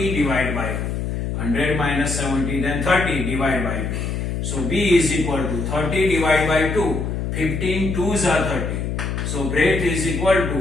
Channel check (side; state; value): left; noise; hum, 2 dB below the sound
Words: divided by 2. 100 minus 70, then 30 divided by 2. So B is equal to 30 divided by 2. 15 2s are 30. So breadth is equal